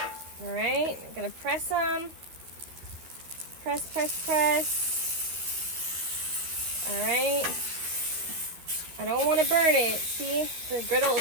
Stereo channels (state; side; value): late; left; 12 ms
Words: All right, I'm gonna press them. Press, press, press. All right. I don't want to burn it. See, the griddle